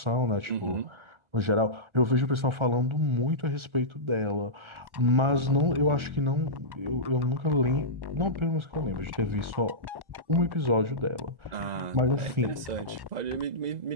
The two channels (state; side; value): late; left; 1.4 ms